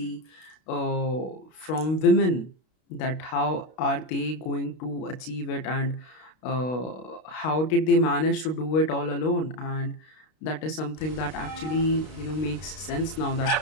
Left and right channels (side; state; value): right; late; 32 ms